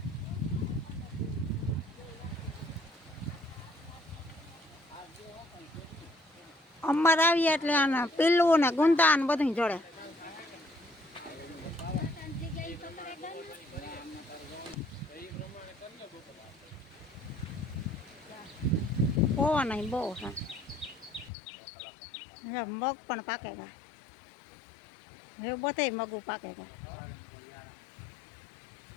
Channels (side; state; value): right; drops out; at 21.3 s